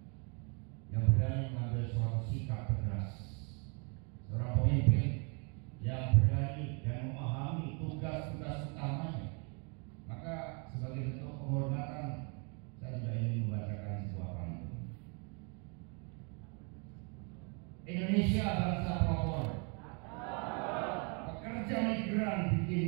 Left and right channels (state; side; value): quieter; left; 35.3 dB